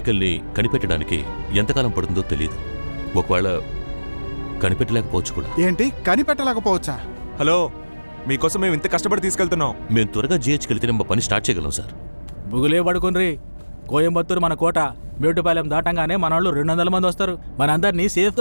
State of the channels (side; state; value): both; inverted; correlation -1.00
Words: కనిపెట్టడానికి ఎంతకాలం పడుతుందో తెలియదు. ఒకవేళ కనిపెట్టలేకపోవచ్చు కూడా. ఏంటి కనిపెట్టలేకపోవచ్చా? హలో, మీకోసం మేము ఇంత కష్టపడి తీసుకెళ్తున్నాం. మేము త్వరగా GHకి వెళ్తే మా పని స్టార్ట్ చేయగలం సార్. బుగులే పడుకుని కోయంబత్తూరు మన కోట. మేటుపాలెం దాటంగానే మన వాళ్ళు 200 మంది వస్తారు. మనందరినీ